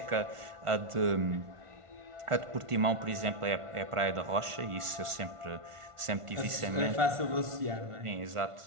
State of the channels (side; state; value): left; late; 1.4 ms